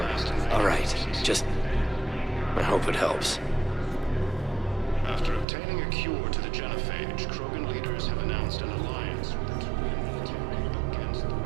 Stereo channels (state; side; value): drops out; left; at 5.5 s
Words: All right. Just... I hope it helps. After obtaining a cure to the genophage, Krogan leaders have announced an alliance with the Turian military against the